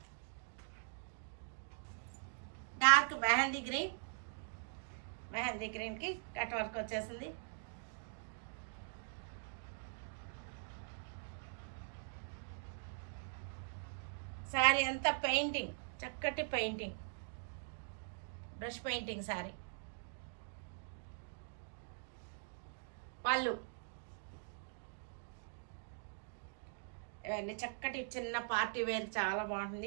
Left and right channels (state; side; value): silent; left; digital silence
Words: డార్క్ మెహందీ గ్రీన్కి కట్ వర్క్ వచ్చేసింది. శారీ అంతా పెయింటింగ్, చక్కటి పెయింటింగ్, బ్రష్ పెయింటింగ్ శారీ. పళ్ళు ఇవన్నీ చక్కటి చిన్న పార్టీ వేర్, చాలా